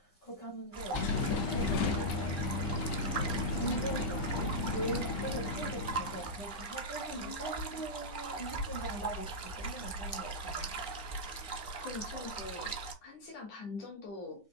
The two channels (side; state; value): right; late; 9.8 ms